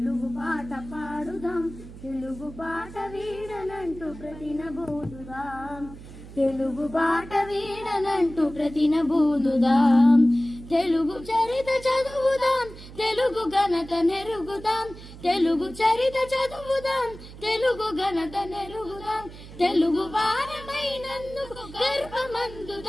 పాట పాడుదాం, తెలుగు పాట వీడనంటూ ప్రతినబోదుదాం, తెలుగు పాట వీడనంటూ ప్రతినబోదుదాం. తెలుగు చరిత చదువుదాం, తెలుగు ఘనత నెరుగుదాం, తెలుగు చరిత చదువుదాం, తెలుగు ఘనత నెరుగుదాం, తెలుగు వారమైనందుకు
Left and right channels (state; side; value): noise; right; hum, 16 dB below the sound